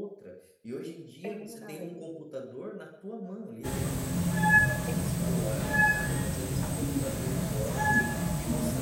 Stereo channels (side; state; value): both; identical; correlation 1.00